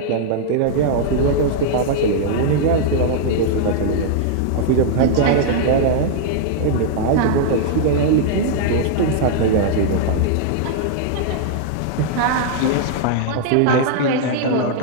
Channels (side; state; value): both; different; correlation -0.01